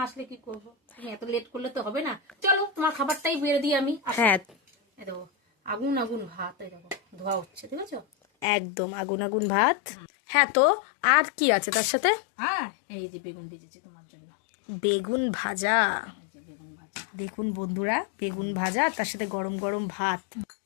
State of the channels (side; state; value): right; drops out; at 8.5 s